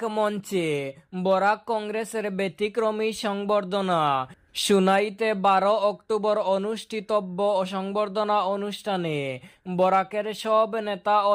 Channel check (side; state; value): both; identical; correlation 1.00